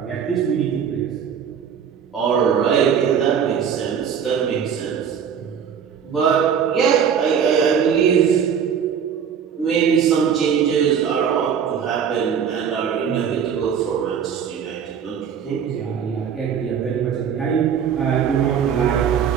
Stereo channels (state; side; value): quieter; left; 7.7 dB